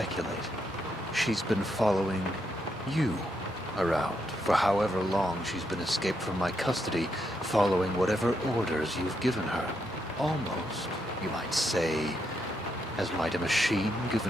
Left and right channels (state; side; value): normal; both; correlation 0.80